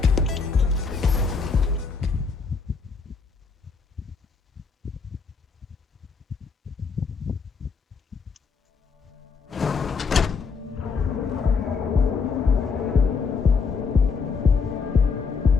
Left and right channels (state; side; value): quieter; right; 5.1 dB